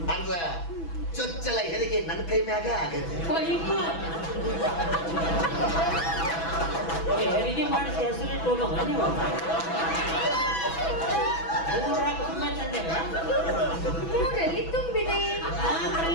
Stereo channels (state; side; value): late; right; 6.1 ms